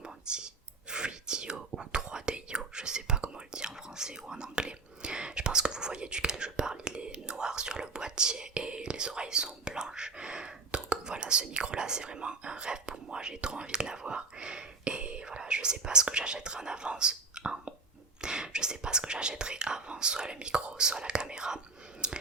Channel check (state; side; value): quieter; left; 3.9 dB